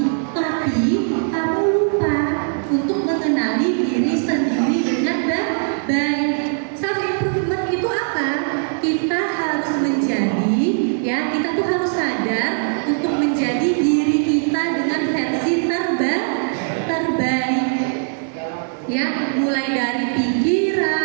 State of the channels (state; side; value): silent; left; 55 dB below the other